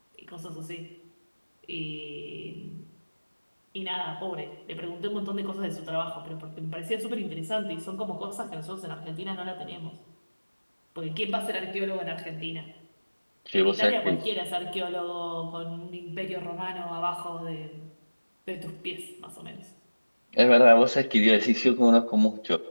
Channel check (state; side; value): inverted; both; correlation -1.00